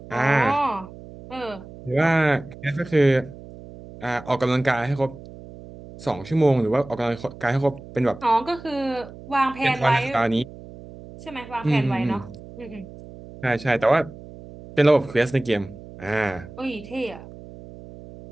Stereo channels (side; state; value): right; noise; hum, 17 dB below the sound